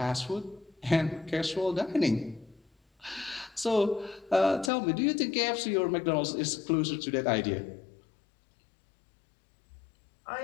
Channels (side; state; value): right; drops out; at 4.7 s